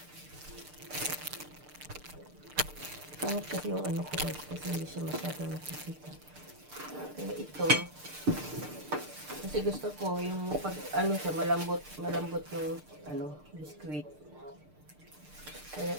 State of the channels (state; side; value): late; left; 6.7 ms